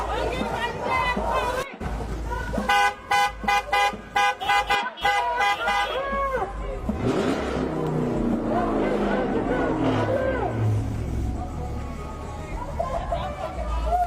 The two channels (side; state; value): both; identical; correlation 1.00